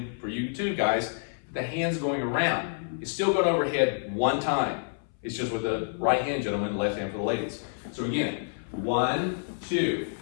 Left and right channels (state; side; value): silent; right; 59 dB below the other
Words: for you too, guys, the hand's going around. It's still going overhead one time. It's just with the right hand, gentlemen, left hand for the ladies. So again, 1, 2,